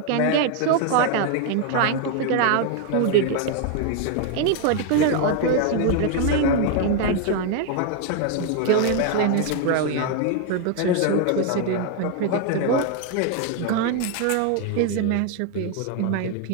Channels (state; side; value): different; both; correlation 0.00